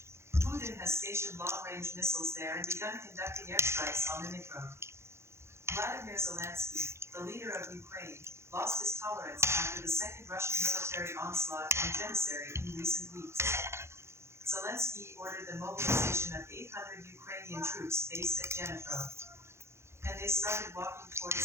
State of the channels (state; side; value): late; left; 0.13 ms